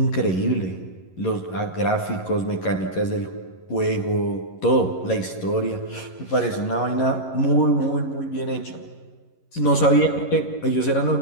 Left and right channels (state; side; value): late; right; 11 ms